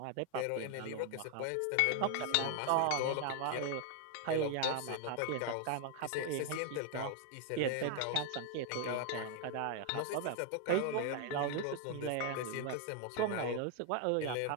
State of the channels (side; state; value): both; different; correlation 0.01